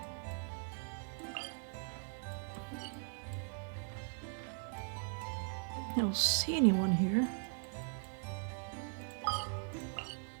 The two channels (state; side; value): silent; left; 51 dB below the other